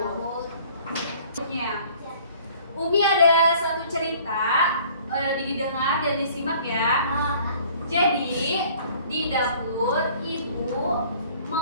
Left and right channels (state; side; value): inverted; both; correlation -0.53